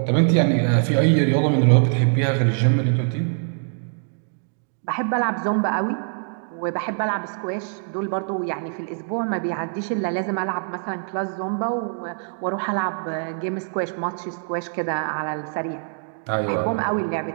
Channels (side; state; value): left; silent; 63 dB below the other